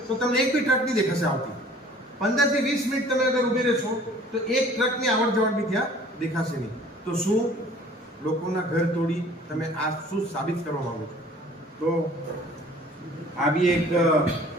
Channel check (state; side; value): normal; both; correlation 0.51